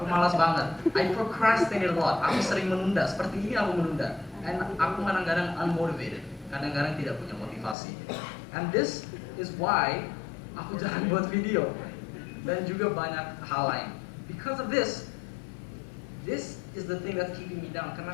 malas banget. I procrastinate a lot. Aku sering menunda. Seperti ini aku menunda. And aku kadang-kadang unmotivated. Kadang-kadang tidak punya motivasi. And this is why aku jarang buat video. Dan juga banyak hal lain. Because of this is the thing that's keeping me down. Karena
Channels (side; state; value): right; drops out; at 7.8 s